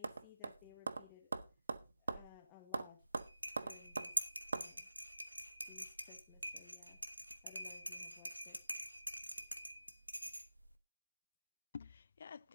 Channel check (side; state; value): both; inverted; correlation -0.95